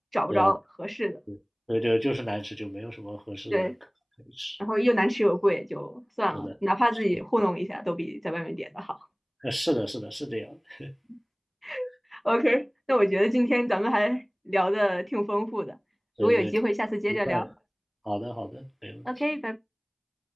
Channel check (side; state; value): both; identical; correlation 1.00